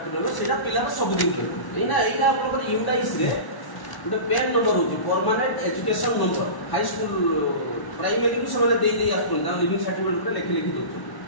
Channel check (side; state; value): right; late; 1.1 ms